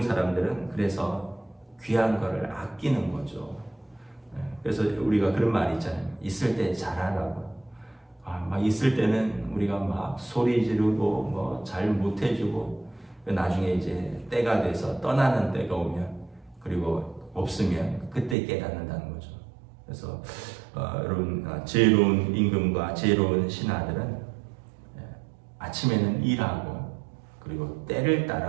사람들은 그래서 귀한 거를 아끼는 거죠. 그래서 우리가 그런 말이 있잖아요. 있을 때 잘하라고. 막 있을 때는 우리가 막 소리 지르고 잘 못해주고, 나중에 이제 때가 돼서 떠나는 때가 오면, 그리고 없으면 그때 깨닫는다는 거죠. 그래서 여러분, 지혜로운 임금과 지혜로운 신하들은 아침에는 일하고, 그리고 때를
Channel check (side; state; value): left; drops out; at 18.4 s